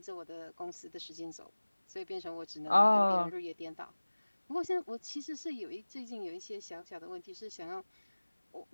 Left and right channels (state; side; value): inverted; both; correlation -1.00